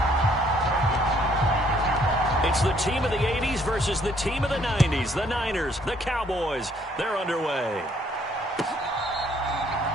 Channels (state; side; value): normal; both; correlation 0.65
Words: It's the team of the 80s versus the team of the 90s. The Niners, the Cowboys, they're underway.